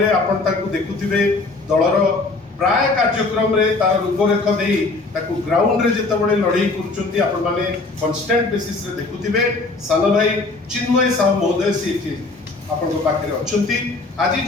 आपण ताकू देखुथिबे दलर प्राय कार्यक्रम रे तार रूपरेख देई ताकू ग्राउंड रे जेते बडे लड़ाई करचंती आपण माने कांस्टेंट बेसिस रे देखुथिबे। सान भाई चिन्मय साहू महोदय से आपण पाखे अछंती। आज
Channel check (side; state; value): right; quieter; 3.5 dB